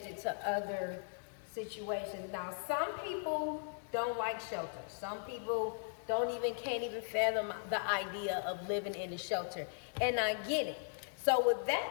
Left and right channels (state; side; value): silent; right; 52 dB below the other